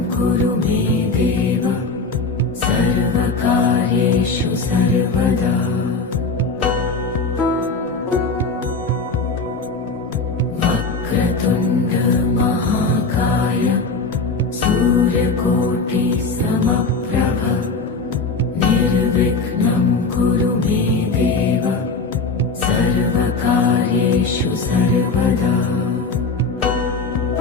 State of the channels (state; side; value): quieter; right; 4.0 dB